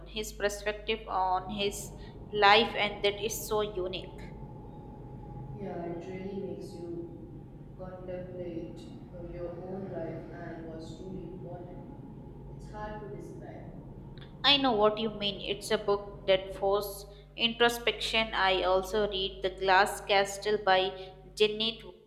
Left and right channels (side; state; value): both; identical; correlation 1.00